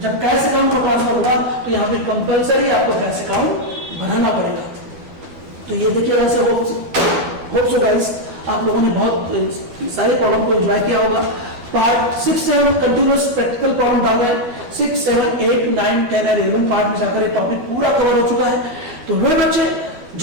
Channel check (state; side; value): late; left; 12 ms